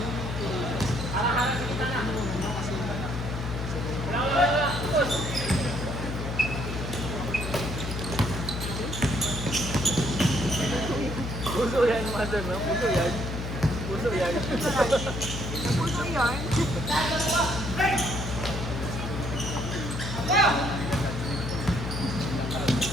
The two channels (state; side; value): noise; left; hum, 5 dB below the sound